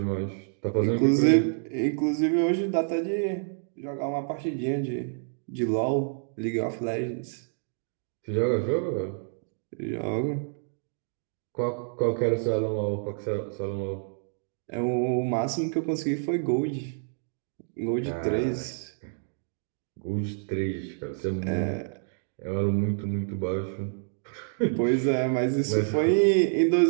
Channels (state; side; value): silent; left; digital silence